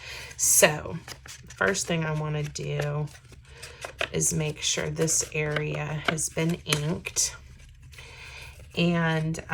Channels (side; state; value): both; identical; correlation 1.00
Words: So first thing I want to do is make sure this area has been inked. And